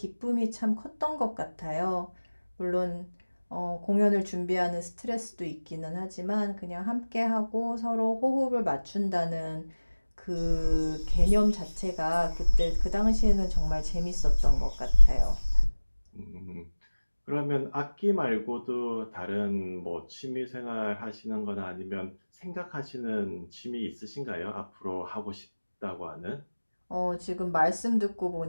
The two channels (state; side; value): inverted; both; correlation -1.00